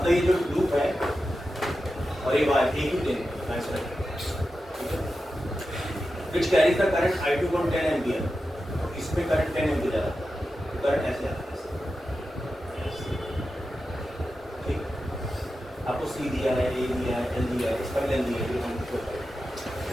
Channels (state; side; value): normal; both; correlation 0.91